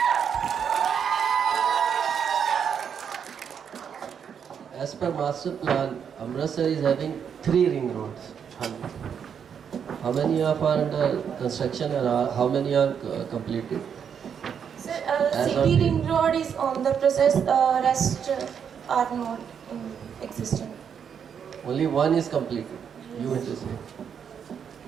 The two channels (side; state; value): left; quieter; 7.6 dB